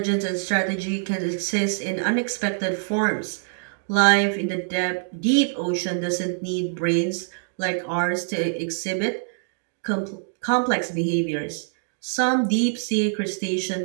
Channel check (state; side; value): silent; left; digital silence